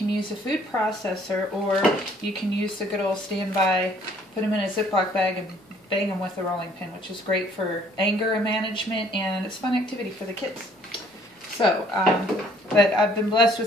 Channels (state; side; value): normal; both; correlation 0.60